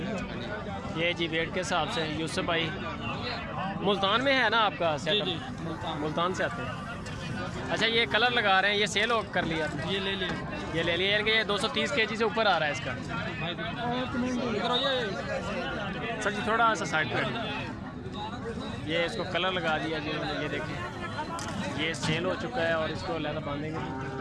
ये जी वेट के हिसाब से यूसुफ भाई मुल्तान में है ना आपका सेटअप? मुल्तान से आते हैं। अच्छा, ये कलर लगा रहे हैं, ये सेल कर लिया? ये ले लिया, ये ले लिया। ये 230 kg से ऊपर आ रहा है इसका। सर जी थोड़ा सा साइड पर, ये इसको कलर लगा दिया जी। ये देखिए, ये सेल हो चुका है और इसको लहदा बांधेंगे।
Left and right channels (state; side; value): identical; both; correlation 1.00